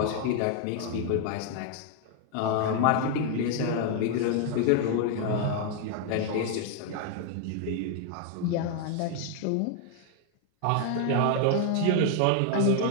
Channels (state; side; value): different; both; correlation 0.00